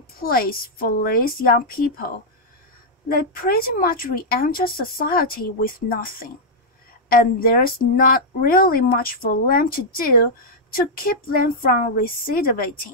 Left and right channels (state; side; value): normal; both; correlation -0.05